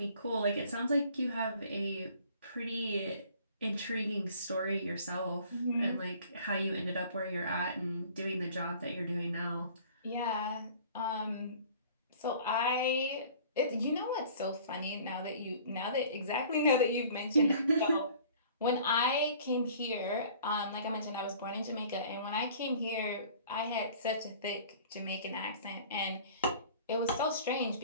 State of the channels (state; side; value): inverted; both; correlation -0.50